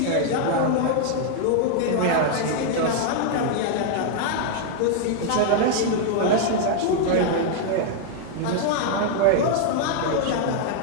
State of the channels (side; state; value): both; different; correlation 0.00